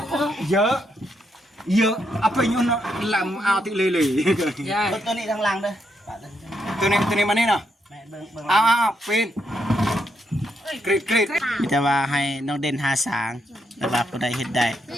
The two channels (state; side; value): normal; both; correlation 0.79